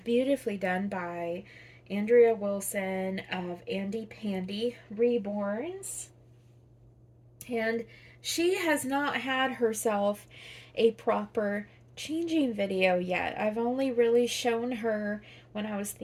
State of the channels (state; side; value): identical; both; correlation 1.00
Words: beautifully done by Andrea Wilson of Andy Pandy Reborns, and she has not had herself a proper changing video yet. I've only really shown her when I was